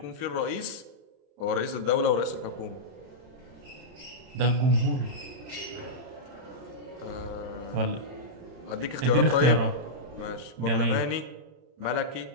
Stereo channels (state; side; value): late; left; 31 ms